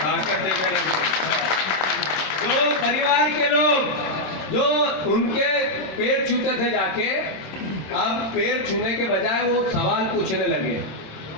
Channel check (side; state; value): right; late; 26 ms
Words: देने लगे। जो परिवार के लोग जो उनके पैर छूते थे जाके, अब पैर छूने के बजाय वो सवाल पूछने लगे।